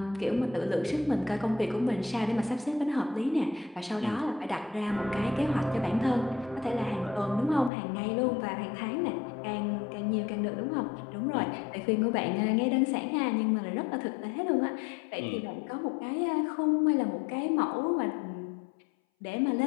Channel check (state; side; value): drops out; right; at 7.7 s